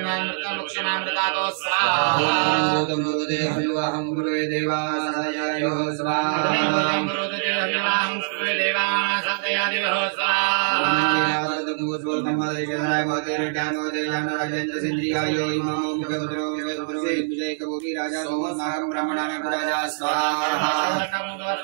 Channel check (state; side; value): silent; left; digital silence